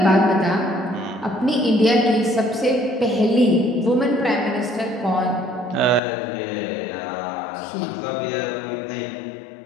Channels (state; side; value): drops out; right; at 6.0 s